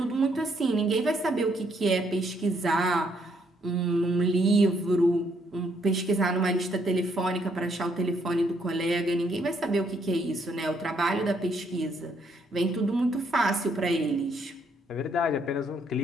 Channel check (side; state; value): both; normal; correlation 0.71